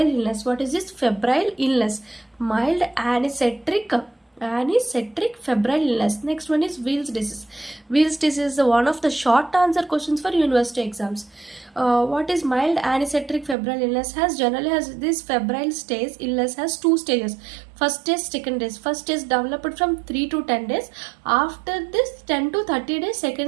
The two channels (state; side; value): drops out; left; at 13.6 s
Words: illness. What is this febrile illness? Mild anecetric febrile illness. Next one is Weil's disease. Weil's disease is one of the short answer questions for university exams. What is mild anecetric febrile illness? Generally has this febrile stage illness has two stages. First stage, second stage. First stage developed from 3 to 10 days. After this 10 to 30 days,